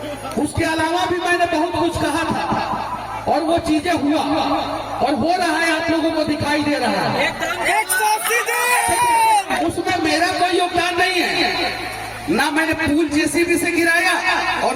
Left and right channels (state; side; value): identical; both; correlation 1.00